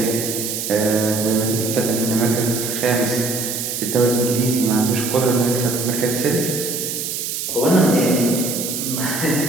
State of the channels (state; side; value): noise; right; hiss, 4 dB below the sound